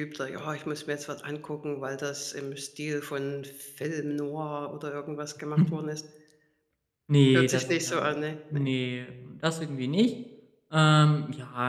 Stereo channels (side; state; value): both; identical; correlation 1.00